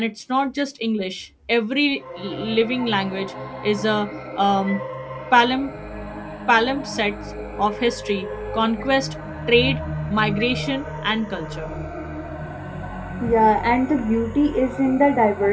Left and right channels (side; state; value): both; identical; correlation 1.00